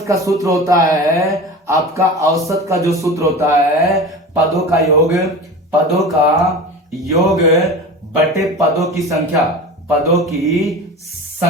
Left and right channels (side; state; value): both; normal; correlation 0.32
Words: का सूत्र होता है आपका, औसत का जो सूत्र होता है, पदों का योग बटे पदों की संख्या, पदों की